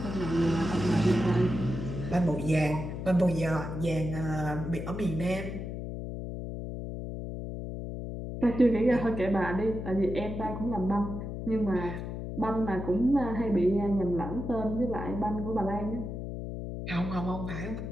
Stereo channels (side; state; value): left; noise; hum, 6 dB below the sound